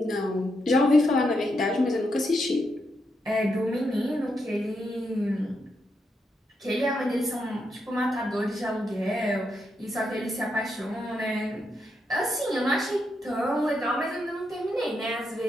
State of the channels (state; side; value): normal; both; correlation 0.82